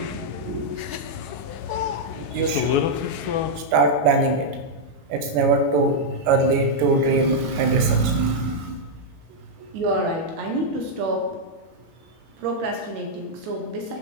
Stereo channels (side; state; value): left; late; 19 ms